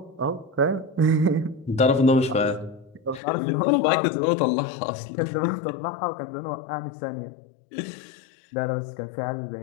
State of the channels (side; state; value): right; drops out; at 3.2 s